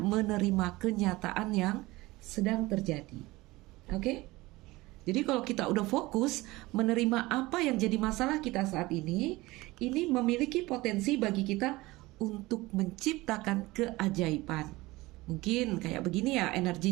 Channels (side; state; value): left; quieter; 20.4 dB